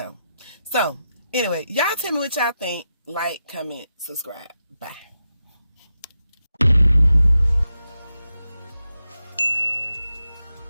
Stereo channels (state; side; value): inverted; both; correlation -0.88